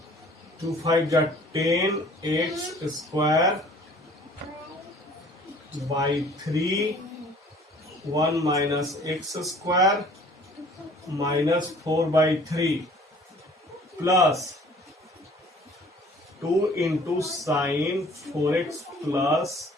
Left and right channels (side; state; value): both; normal; correlation 0.52